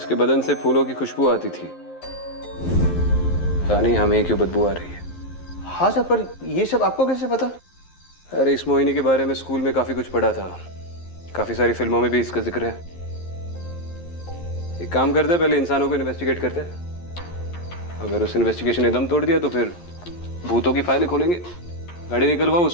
बदन से फूलों की खुशबू आती थी। पता नहीं हमें क्यों बदबू आ रही है। हाँ सर, पर ये सब आपको कैसे पता? अरे इस मोहिनी के बारे में स्कूल में काफी कुछ पढ़ा था। काफी सारी फिल्मों में भी इसका जिक्र है। एक काम करते हैं, पहले इंसानों को इन्वेस्टिगेट करते हैं। अगर उस इन्वेस्टिगेशन ने दम तोड़ दिया तो फिर भूतों की फाइलें खोलेंगे। गाड़ी निकलवाओ,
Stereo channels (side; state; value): right; late; 11 ms